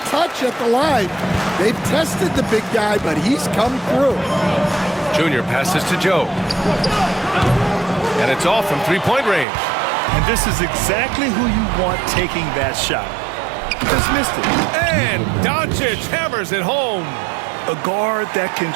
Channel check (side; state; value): left; drops out; at 9.5 s